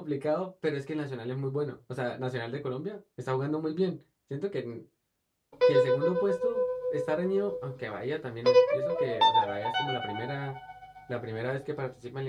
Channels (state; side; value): identical; both; correlation 1.00